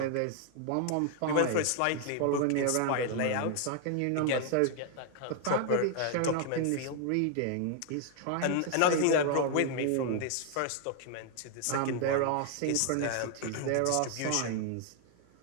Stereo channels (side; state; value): both; different; correlation 0.00